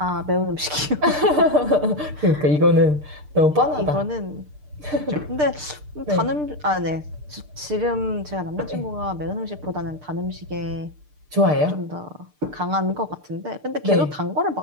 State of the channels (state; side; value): late; left; 6.7 ms